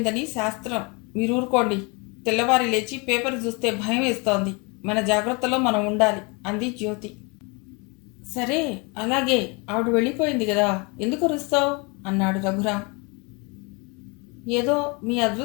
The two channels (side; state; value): right; quieter; 30.0 dB